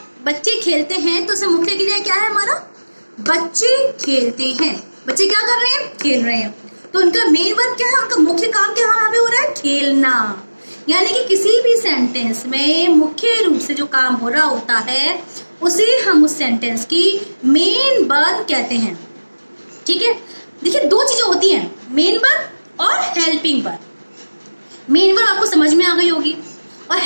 बच्चे खेलते हैं तो उसमें मुख्य क्रिया क्या है हमारा? बच्चे खेलते हैं। बच्चे क्या कर रहे हैं? खेल रहे हैं। तो उनका मेन वर्ब क्या है? उनका मुख्य काम क्या यहाँ पे हो रहा है? खेलना। यानी कि किसी भी सेंटेंस में मुख्य रूप से जो काम हो रहा होता है उसे हम उस सेंटेंस की मेन वर्ब कहते हैं। ठीक है। देखिए, दो चीजें होती हैं, मेन वर्ब और हेल्पिंग वर्ब। मेन वर्ब आपको समझ में आ गई होगी, और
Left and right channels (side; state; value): both; inverted; correlation -1.00